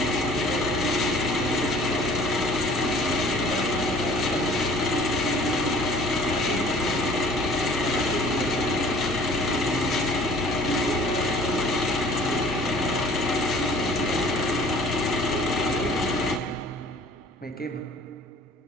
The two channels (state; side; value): normal; both; correlation 0.50